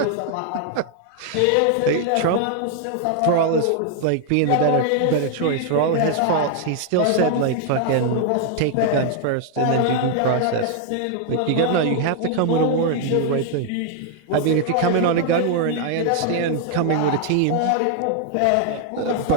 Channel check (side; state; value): both; different; correlation 0.00